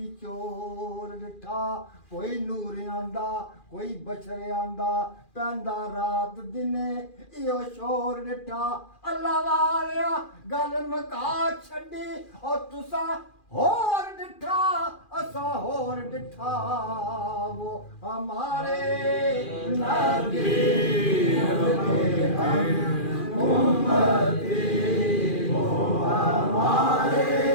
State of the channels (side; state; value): right; late; 2.4 ms